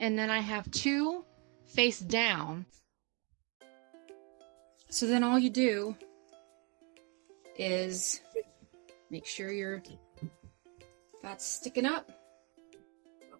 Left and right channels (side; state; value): left; quieter; 33.2 dB